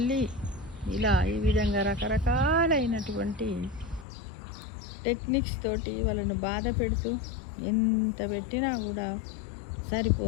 ఇలా ఈ విధంగా రకరకాలైనటువంటి టెక్నిక్స్ తోటి వాళ్ళను బాధ పెడుతూ ఎంత పెట్టినా కూడా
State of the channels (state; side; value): drops out; right; at 4.0 s